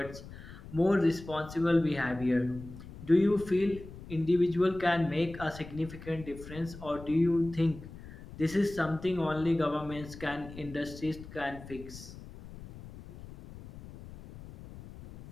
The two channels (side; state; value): left; noise; rumble, 15 dB below the sound